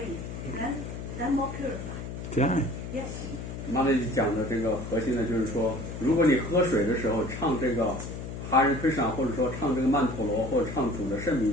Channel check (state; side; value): noise; left; hum, 8 dB below the sound